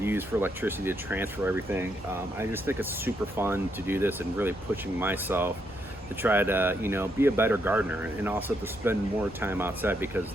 use for electricity to transfer everything. I just think it's super fun to do this and really pushing myself to try to, you know, be a better gardener and also to spend more time outside, because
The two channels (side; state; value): both; normal; correlation 0.77